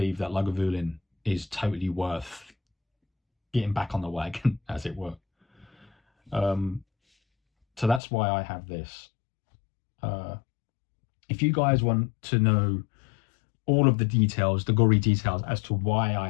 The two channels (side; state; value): right; drops out; at 8.0 s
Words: that Lagavulin is totally worth getting back on the wagon, as it were. So that's why I have this. If you guys want to know all of the details, the gory details as to why